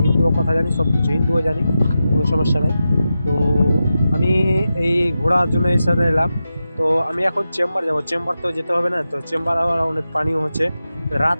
হিন্দুও কথা জানি, সব কিছু হিন্দুও জানি, কোনো সমস্যা নাই। তো আমি এই ঘোরার জন্য এই সাথে এলাম। তো আমি এখন চেম্বার যাব, চেম্বার তো যেতে হবে না, তো চেম্বার আবার অনেক পানিও হচ্ছে,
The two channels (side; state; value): both; inverted; correlation -0.91